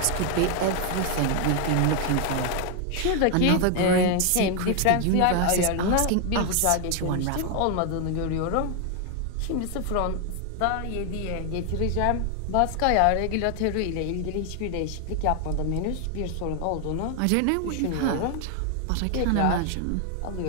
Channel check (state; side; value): different; both; correlation 0.00